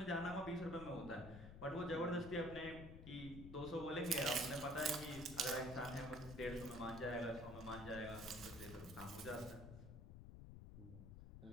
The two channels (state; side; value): noise; left; rumble, 11 dB below the sound